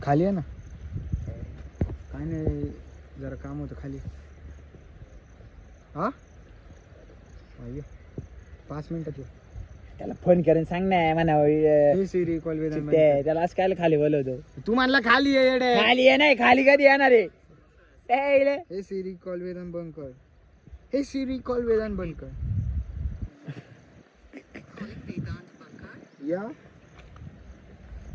खाली आहे ना. काय नाही जरा काम होतं खाली. हा 5 मिनिटात ये. त्याला फोन करून सांग ना म्हणा सिरी कॉल वेदान त्याला असं काय खाली बोलवतो. तू म्हणला खाली ये येडे. खाली आहे नाही, खाली कधी येणार आहे. हे सिरी कॉल वेदान बंद कर. हे सिरी कॉल वेदान बंद कर. या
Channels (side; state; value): both; identical; correlation 1.00